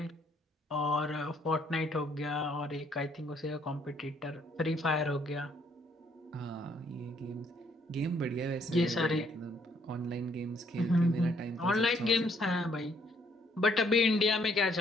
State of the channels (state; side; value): normal; both; correlation 0.67